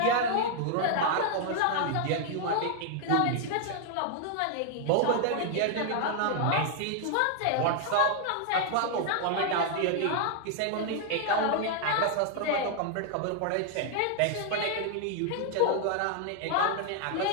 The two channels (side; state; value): both; different; correlation 0.00